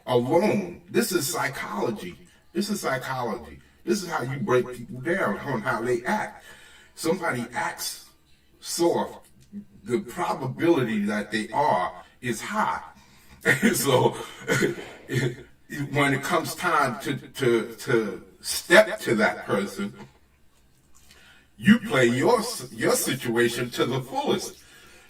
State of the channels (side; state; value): both; identical; correlation 1.00